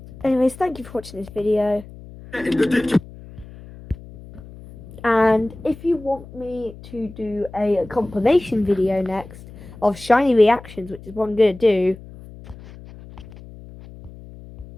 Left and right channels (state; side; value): noise; left; hum, 18 dB below the sound